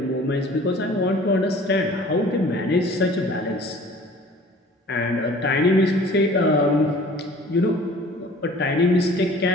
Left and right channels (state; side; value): normal; both; correlation 0.48